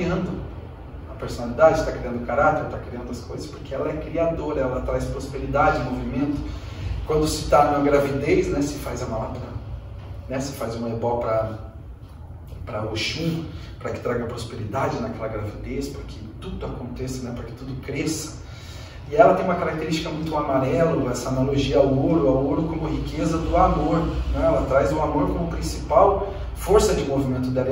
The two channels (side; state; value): both; identical; correlation 1.00